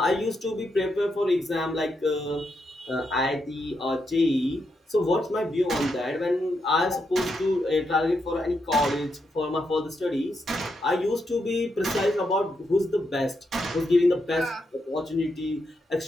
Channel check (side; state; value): both; normal; correlation 0.82